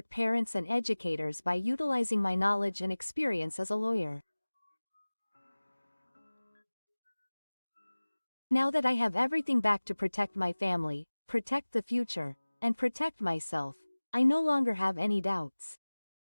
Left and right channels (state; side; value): inverted; both; correlation -1.00